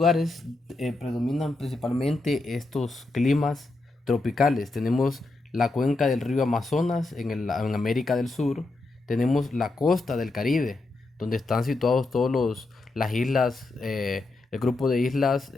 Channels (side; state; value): right; quieter; 3.2 dB